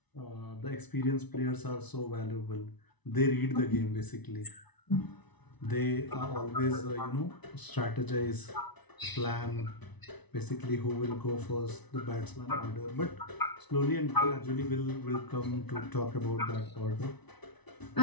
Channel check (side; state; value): right; late; 1.0 ms